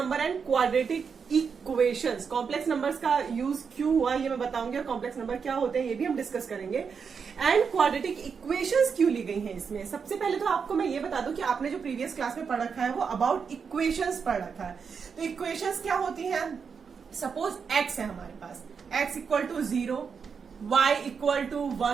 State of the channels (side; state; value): left; quieter; 6.1 dB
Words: and quadratic equations, complex numbers का यूज क्यों हुआ ये मैं बताऊंगी, और कॉम्प्लेक्स नंबर क्या होते हैं ये भी हम डिस्कस करेंगे, एंड क्वाड्रेटिक इक्वेशंस क्यों ली गई हैं इसमें. सबसे पहले तो आपको मैं ये बता दूं कि आपने जो प्रीवियस क्लास में पढ़ रखा है वो अबाउट इक्वेशंस पढ़ रखा है. तो इक्वेशंस क्या होती है? सपोज एक्स है हमारे पास, X equal to 0, Y equal to